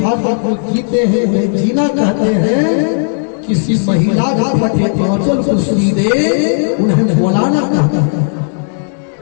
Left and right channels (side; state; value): right; silent; digital silence